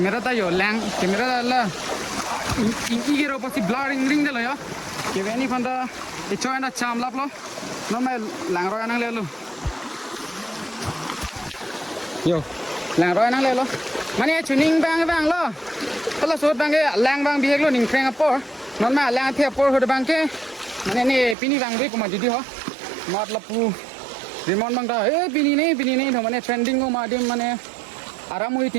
ता यो लैंग कैमरा ला इंकी के रो पसी ब्लरिंग रिंग दे लयो के वेनी फंदा इचोय ना चाम लाप लो न मैं लांग रोय नंग ले लो यो लांग रोय नंग ले लो माने चुनिंग बांग बांग लो तला सोट बांगे लांग बांग बिहेक लो निंग फ्रेंग अपर नन मा लांग थे अपर होद बांग के माने ने पिनी बांग बे कुमा दिदि हो मतलब पु रिमोन बांग दा ए पिनी नहीं तो माने ट्रेंडिंग को मादिम माने आराम हुई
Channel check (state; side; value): drops out; left; at 21.4 s